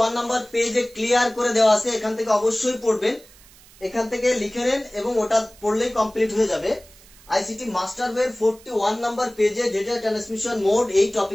নম্বর পেজে ক্লিয়ার করে দেওয়া আছে। এখান থেকে অবশ্যই পড়বেন, এখান থেকে লিখে নেন এবং ওটা পড়লেই কমপ্লিট হয়ে যাবে। আইসিটি মাস্টার বইয়ের 41 নম্বর পেজে ডেটা ট্রান্সমিশন মোড এই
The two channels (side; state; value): right; noise; hiss, 25 dB below the sound